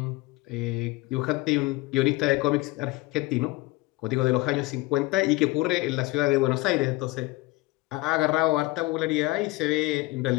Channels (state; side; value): quieter; right; 20.9 dB